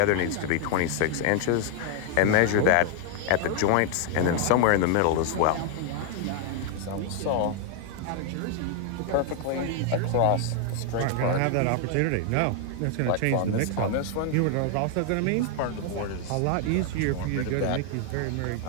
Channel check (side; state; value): both; different; correlation 0.00